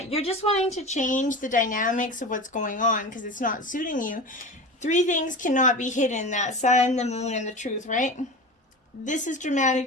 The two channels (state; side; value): normal; both; correlation 0.30